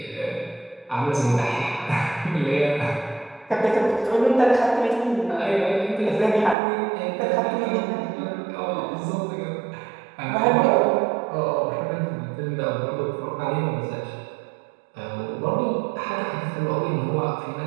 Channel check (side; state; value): left; drops out; at 6.6 s